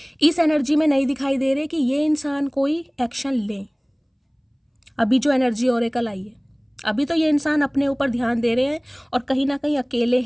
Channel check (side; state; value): both; identical; correlation 1.00